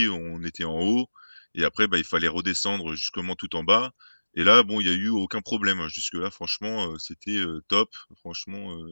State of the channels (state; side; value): inverted; both; correlation -1.00